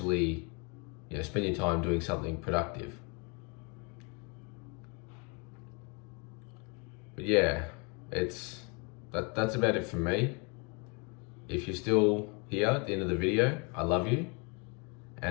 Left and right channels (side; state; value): right; quieter; 32.4 dB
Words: you know, spend your time doing something productive. But yeah, that's about it from me. If you're still here at the end of the video, I love you.